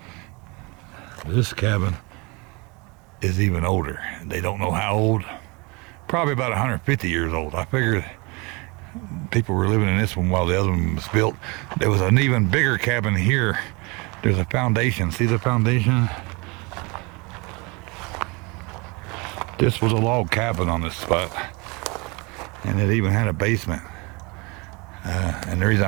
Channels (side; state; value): left; quieter; 27.8 dB